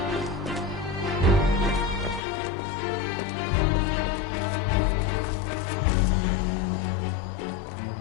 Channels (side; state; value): right; drops out; at 2.2 s